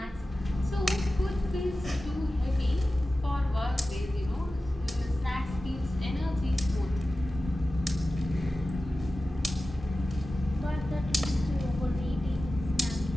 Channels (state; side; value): normal; both; correlation 0.95